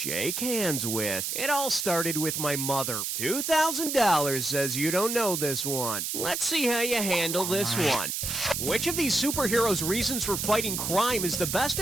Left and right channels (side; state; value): right; noise; hiss, 2 dB below the sound